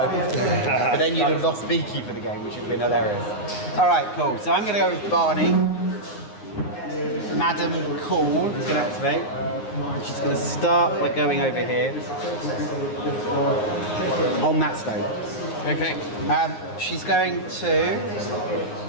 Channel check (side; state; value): right; late; 9.6 ms